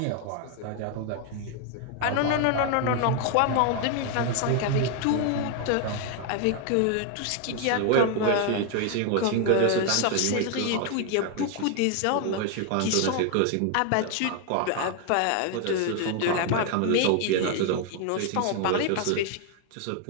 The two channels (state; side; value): different; both; correlation 0.00